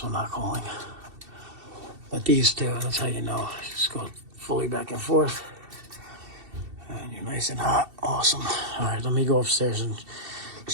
not calling. But these two, that's how you know. Just go fully back and forth. And you're nice and hot. Awesome. All right, let me go upstairs and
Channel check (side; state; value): left; late; 2.7 ms